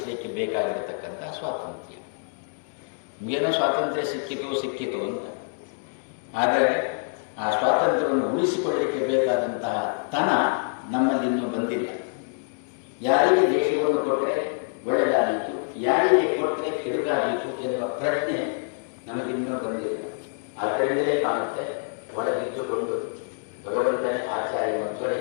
ಬೇಕಾಗಿರತಕ್ಕಂಥ ಸ್ವಾತಂತ್ರ್ಯ. ಏನೋ ಸ್ವಾತಂತ್ರ್ಯ ಸಿಕ್ಕಿತು ಅಂತ. ಆದರೆ ಆ ಸ್ವಾತಂತ್ರ್ಯವನ್ನು ಉಳಿಸಿಕೊಳ್ಳಲಿಕ್ಕೆ ಬೇಕಾದಂತಹ ತನ ನಮ್ಮಲ್ಲಿ ಇನ್ನೂ ಬಂದಿಲ್ಲ. ಯಾರಿಗೆ ದೇಶವನ್ನು ಕೊಟ್ಟರೆ ಒಳ್ಳೆಯದಾದೀತು, ಯಾರಿಗೆ ಕೊಟ್ಟರೆ ಕೆಡುಕಾದೀತು ಎನ್ನುವ ಪ್ರಶ್ನೆ ನಮಗಿನ್ನೂ ಬಂದಿಲ್ಲ. ಅದರಿಂದಲೇ ಕಾಣುತ್ತೆ ಒಳಗಿದ್ದುಕೊಂಡು ಭಗವಂತನೇ ಆಚಾರ್ಯ ಮಧ್ವರೇ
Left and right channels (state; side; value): silent; right; digital silence